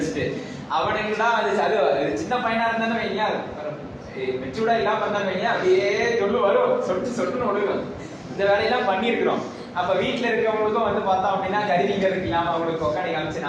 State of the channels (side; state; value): both; identical; correlation 1.00